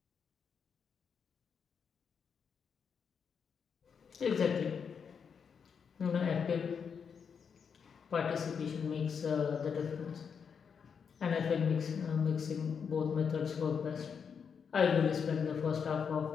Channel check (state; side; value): quieter; right; 6.6 dB